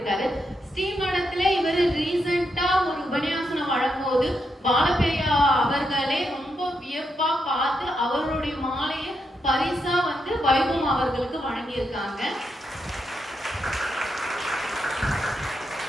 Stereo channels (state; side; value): normal; both; correlation 0.82